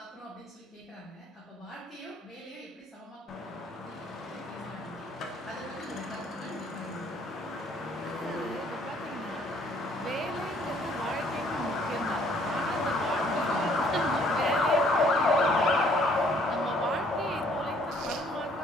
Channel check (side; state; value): both; normal; correlation 0.62